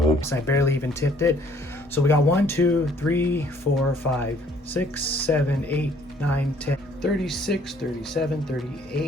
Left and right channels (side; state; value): both; normal; correlation 0.61